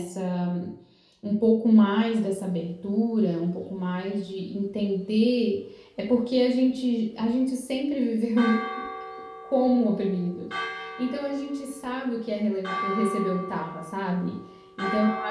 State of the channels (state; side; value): identical; both; correlation 1.00